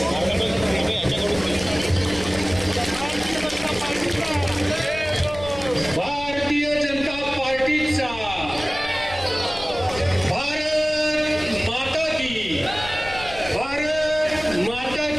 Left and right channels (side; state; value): left; noise; rumble, 14 dB below the sound